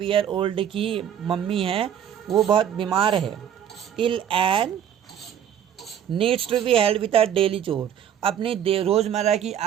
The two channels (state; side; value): quieter; left; 9.5 dB